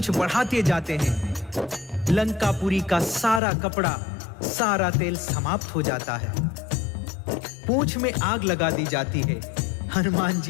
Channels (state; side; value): drops out; right; at 3.4 s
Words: बढ़ाते जाते हैं। लंकापुरी का सारा कपड़ा, सारा तेल समाप्त हो जाता है। पूंछ में आग लगा दी जाती है। हनुमान